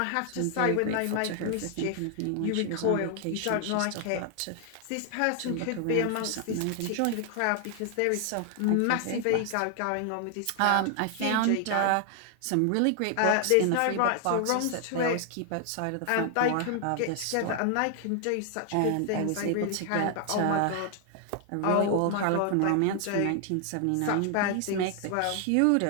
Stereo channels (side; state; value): both; different; correlation 0.00